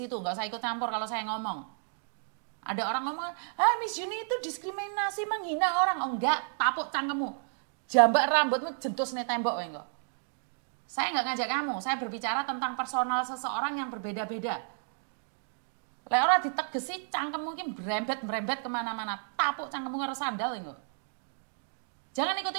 nggak usah ikut campur kalau saya ngomong. Ada orang ngomong, Miss Yuni itu diskriminasi, menghina orang. Oh enggak, tapuk cangkemmu. Jambak rambutmu, jentus nih tembok. Enggak. Saya nggak ngajak kamu, saya berbicara tentang personal seseorang yang berbeda-beda. Lek ora ditegesi cangkem mungkin berembet kemana-mana. Tapuk cangkemmu karo sandal enggak. Jangan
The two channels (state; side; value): silent; left; digital silence